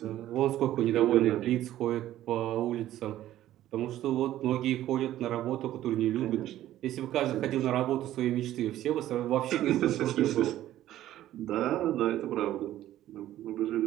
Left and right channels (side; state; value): left; quieter; 13.4 dB